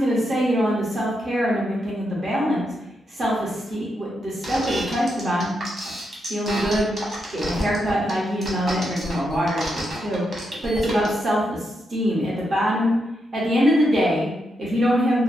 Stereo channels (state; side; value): normal; both; correlation 0.83